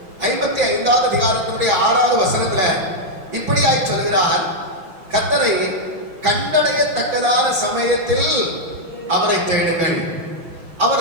55வது அதிகாரத்தினுடைய 6வது வசனத்துல இப்படியாய் சொல்கிறார், கர்த்தரை கண்டடையத்தக்கதான சமயத்தில் அவரை தேடுங்கள்,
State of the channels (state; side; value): late; left; 5.9 ms